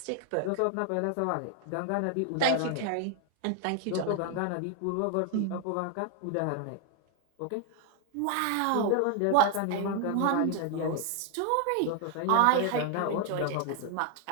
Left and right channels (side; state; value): both; different; correlation 0.00